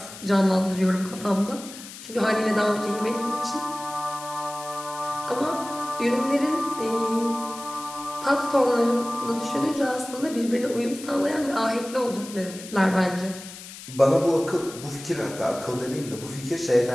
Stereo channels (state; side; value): noise; left; hiss, 14 dB below the sound